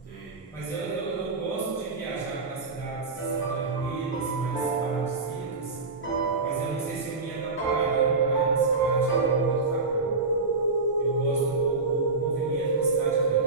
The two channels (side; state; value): left; quieter; 3.9 dB